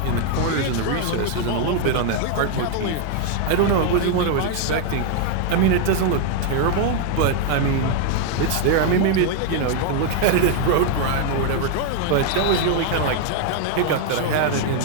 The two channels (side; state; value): both; different; correlation 0.00